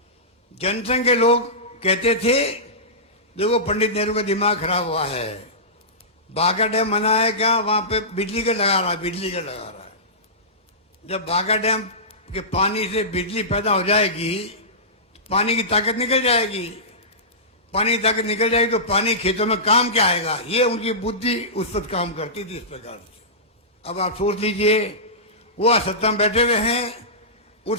जनसंघ के लोग कहते थे देखो पंडित नेहरू का दिमाग खराब हुआ है, बाघा डैम बना है क्या, वहां पे बिजली का लगा रहा है, बिजली का लगा रहा है। जब बाघा डैम के पानी से बिजली पैदा हो जाएगी, पानी की ताकत निकल जाएगी, पानी की ताकत निकल जाएगी तो पानी खेतों में काम क्या आएगा। ये उनकी बुद्धि उस वक्त काम करती थी इस प्रकार से। अब आप सोच लीजिए, वो सत्ता में बैठे हुए हैं,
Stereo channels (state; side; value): normal; both; correlation -0.19